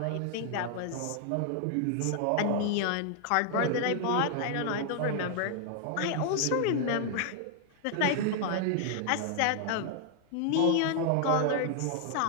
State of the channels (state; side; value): different; both; correlation 0.00